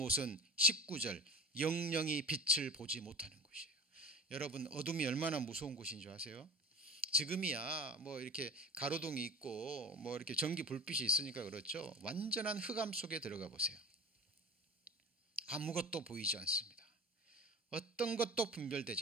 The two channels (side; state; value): both; normal; correlation 0.36